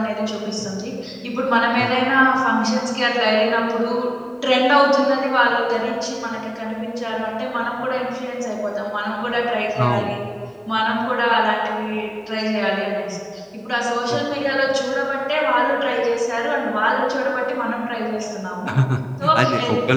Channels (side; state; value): both; identical; correlation 1.00